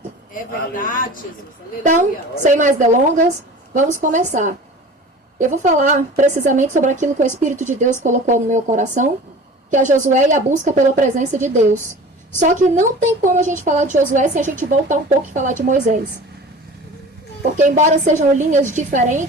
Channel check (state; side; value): normal; both; correlation 0.39